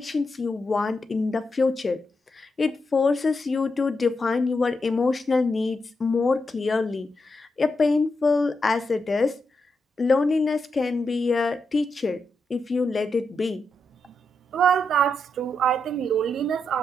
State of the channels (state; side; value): normal; both; correlation 0.84